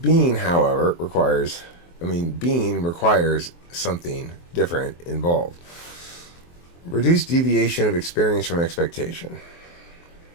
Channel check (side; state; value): right; late; 23 ms